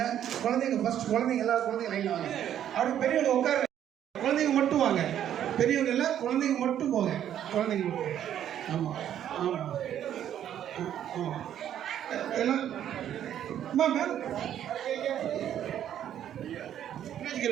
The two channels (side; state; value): left; quieter; 10.4 dB